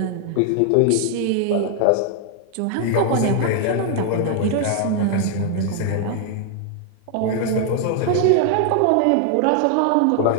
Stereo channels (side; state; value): both; different; correlation 0.00